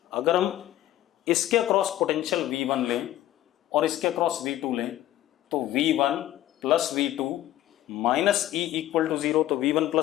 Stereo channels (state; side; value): quieter; right; 13.8 dB